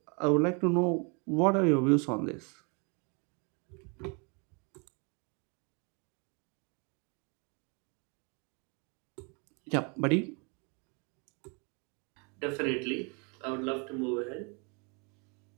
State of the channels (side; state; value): left; quieter; 33.6 dB